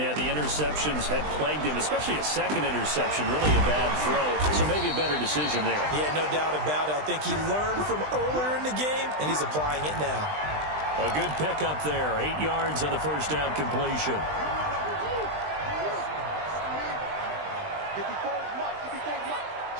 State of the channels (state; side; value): late; left; 20 ms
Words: the interceptions had plagued him, especially a second interception. Really a bad throw. So maybe a better decision there. Yeah, no doubt about it. I think he learned from earlier in the game, and he's applying it now. A good pickup there. 8 yards on the first down completion.